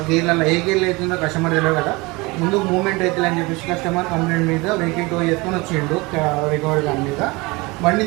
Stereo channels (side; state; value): left; quieter; 24.4 dB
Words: గేర్లలో ఏ గేర్లు అవుతుందో కస్టమర్ తెలియదు కదా. ముందు మూవ్మెంట్ అవుతుంది అని చెప్పేసి కస్టమర్ కంప్లైంట్ మీద వెహికల్ టో చేసుకొని వచ్చిండు రికవరీ దాని మీద. బండి